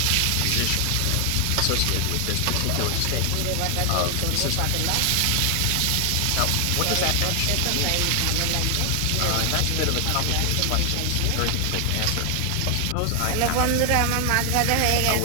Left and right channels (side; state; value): both; different; correlation 0.00